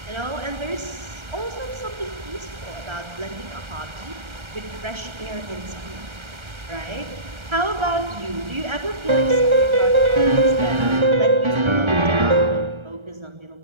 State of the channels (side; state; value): left; late; 1.3 ms